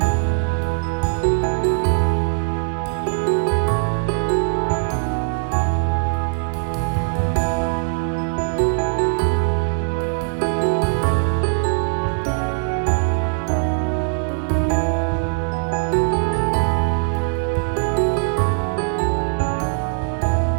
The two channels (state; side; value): silent; left; digital silence